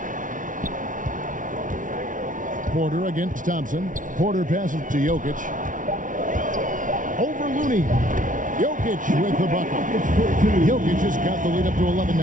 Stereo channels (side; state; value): left; late; 0.38 ms